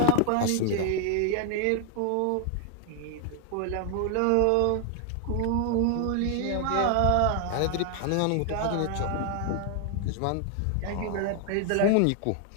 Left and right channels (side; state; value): both; different; correlation 0.00